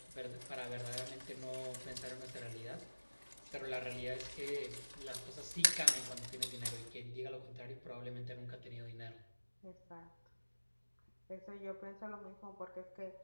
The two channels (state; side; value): inverted; both; correlation -1.00